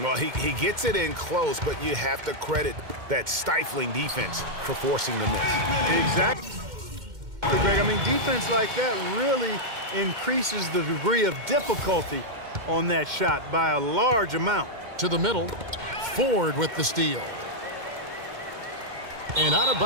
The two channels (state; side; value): late; left; 2.1 ms